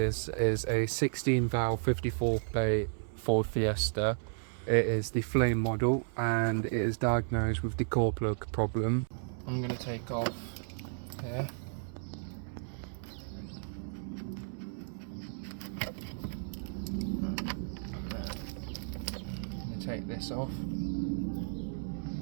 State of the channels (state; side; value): silent; left; 55 dB below the other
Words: is a 16 valve 54 plate Ford Fiesta. It is the flame model and it is diagnosed with the core plug problem. I'm going to take off here. Take this off.